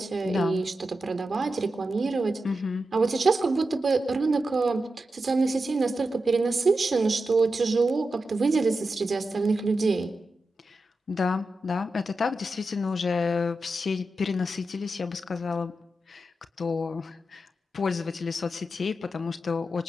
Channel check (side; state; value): both; normal; correlation 0.90